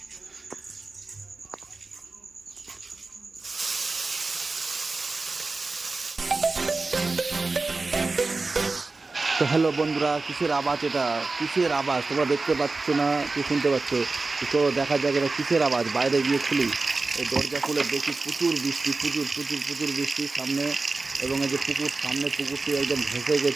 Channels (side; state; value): left; quieter; 3.7 dB